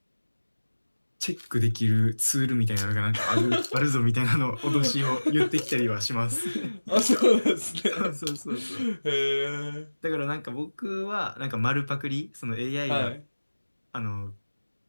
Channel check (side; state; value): both; inverted; correlation -1.00